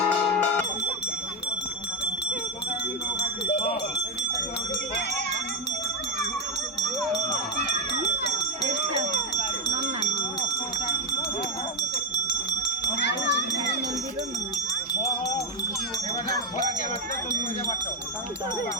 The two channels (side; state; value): both; normal; correlation 0.05